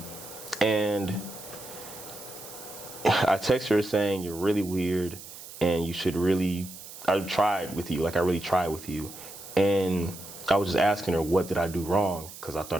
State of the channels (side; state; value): right; noise; hiss, 14 dB below the sound